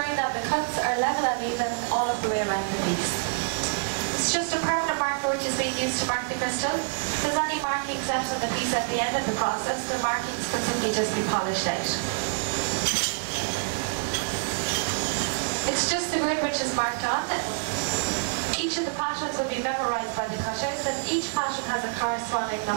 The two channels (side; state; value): left; silent; digital silence